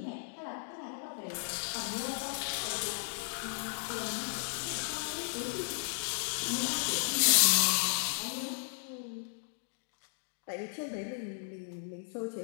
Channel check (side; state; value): right; silent; digital silence